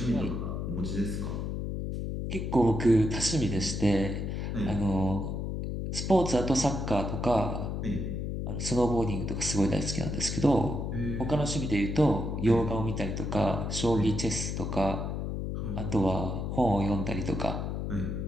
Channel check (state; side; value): noise; left; hum, 3 dB below the sound